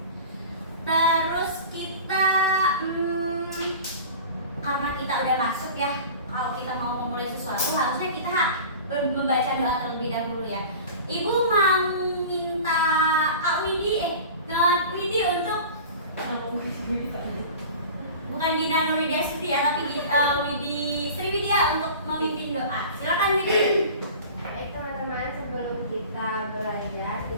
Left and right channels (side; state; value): both; inverted; correlation -0.38